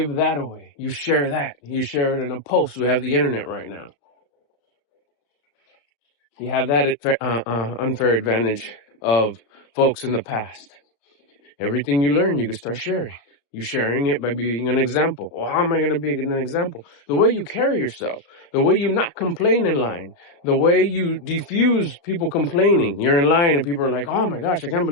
that away. You share that. You share it in a post. We have the internet right now. You have that unfair advantage of folks in the past. Everything you learn, you can start sharing. You're sharing it by being an example. Well, how am I going to be an example? The way you carry yourself, the way you not complain in line, the way you diffuse people complaining. You're in line and people are like, oh my gosh, I can't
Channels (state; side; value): late; right; 35 ms